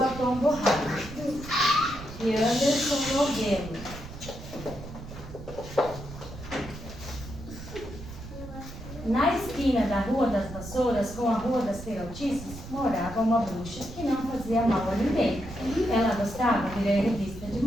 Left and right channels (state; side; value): noise; right; rumble, 13 dB below the sound